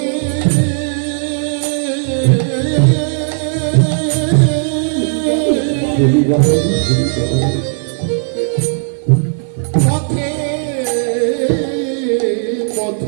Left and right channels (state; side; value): silent; left; digital silence